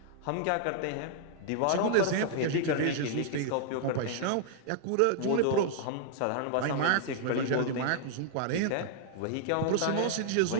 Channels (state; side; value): different; both; correlation -0.01